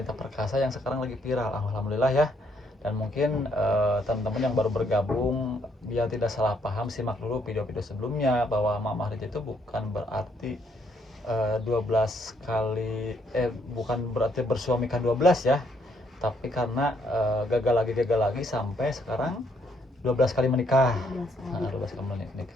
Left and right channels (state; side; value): normal; both; correlation 0.70